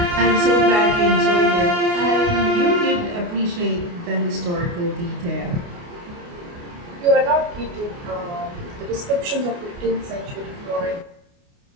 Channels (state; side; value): late; left; 29 ms